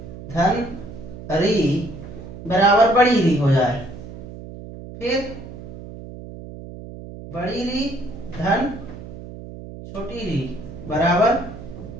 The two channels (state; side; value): noise; right; hum, 13 dB below the sound